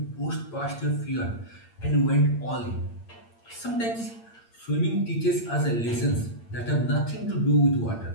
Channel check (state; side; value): late; right; 8.7 ms